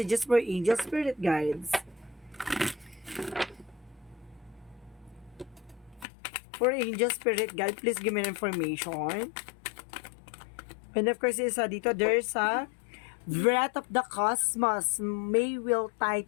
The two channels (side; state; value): right; drops out; at 6.1 s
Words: for angel spirit guides. For angel spirit guide, please give me information. And of course, dito, there's a breath of the cosmos. May will tie